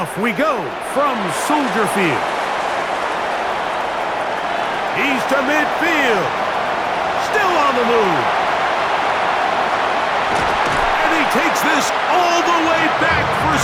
we go from Soldier Field. He's to midfield. Still on the move. And he takes this all the way back for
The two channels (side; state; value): both; identical; correlation 1.00